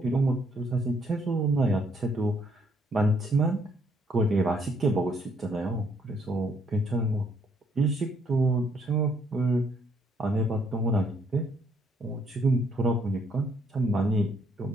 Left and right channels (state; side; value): normal; both; correlation 0.69